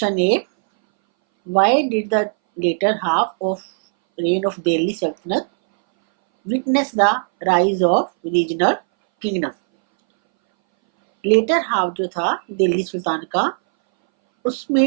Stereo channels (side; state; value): left; silent; 62 dB below the other